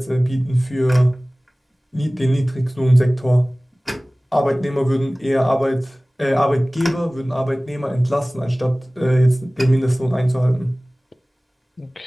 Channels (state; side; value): normal; both; correlation 0.98